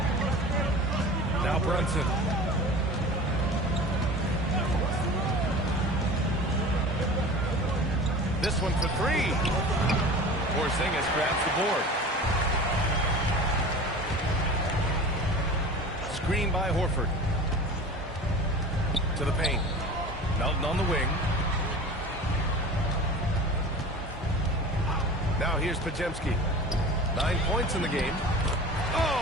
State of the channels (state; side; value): normal; both; correlation 0.37